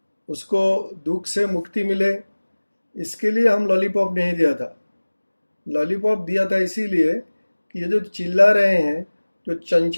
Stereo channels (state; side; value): inverted; both; correlation -1.00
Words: उसको दुख से मुक्ति मिले, इसके लिए हम लॉलीपॉप नहीं दिया था। लॉलीपॉप दिया था इसीलिए कि ये जो चिल्ला रहे हैं, जो